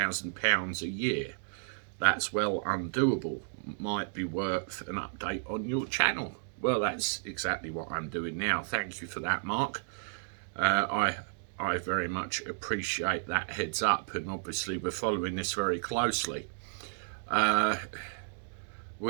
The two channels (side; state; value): left; silent; digital silence